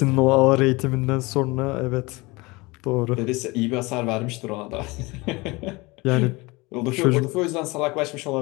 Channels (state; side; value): quieter; right; 24.0 dB